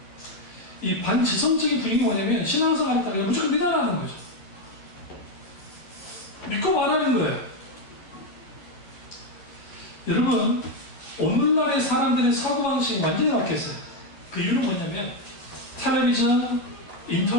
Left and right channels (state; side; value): late; right; 11 ms